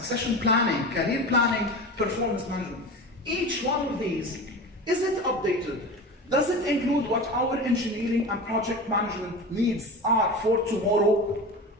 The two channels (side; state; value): both; normal; correlation 0.30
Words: planning, career planning, performance management. Each one of these, is it updated? Does it include what our engineering and project management needs are for tomorrow?